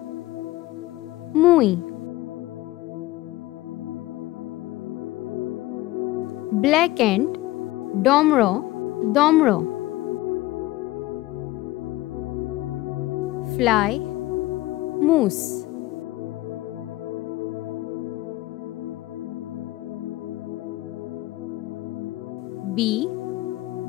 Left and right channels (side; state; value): right; quieter; 17.8 dB